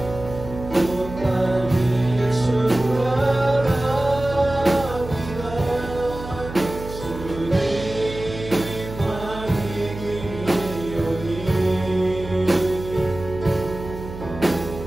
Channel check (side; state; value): right; noise; hum, 11 dB below the sound